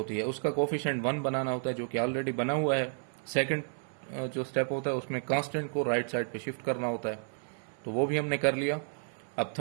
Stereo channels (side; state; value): left; silent; 57 dB below the other